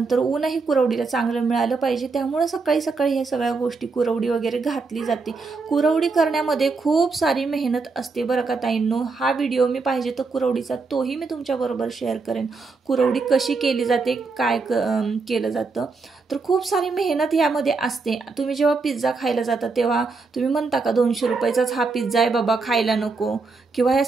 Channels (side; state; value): left; quieter; 4.2 dB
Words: ऊनही कुरवडीला चांगलं मिळालं पाहिजे, त्यामुळे सकाळी ह्या सगळ्या गोष्टी कुरवडी वगैरे घातली जाते. कुरवडी करण्यामध्ये खूप सारी मेहनत असते बरं का ताईंनो. हा व्हिडिओ मी पाहिजे तर कुरवडीचा तोही मी तुमच्याबरोबर शेअर करेन. कुरवडी कशी केली जाते, काय केलं जातं, तर खूप सारी मेहनत यामध्ये असते. तुम्ही जेव्हा पिझ्झा खायला जाता तेव्हा तुम्ही म्हणता का 200 रुपयाचाच हा पिझ्झा आहे बाबा, खायला नको, किंवा ह्या